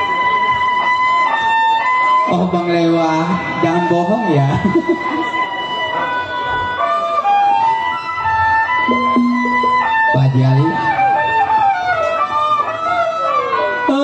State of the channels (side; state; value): both; identical; correlation 1.00